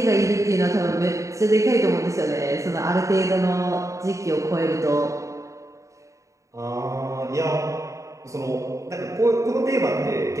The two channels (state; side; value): late; left; 0.15 ms